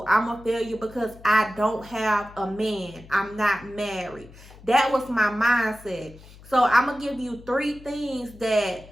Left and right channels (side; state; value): left; noise; hum, 21 dB below the sound